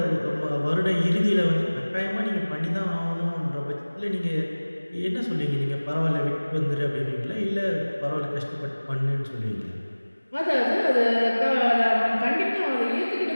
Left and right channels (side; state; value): both; inverted; correlation -1.00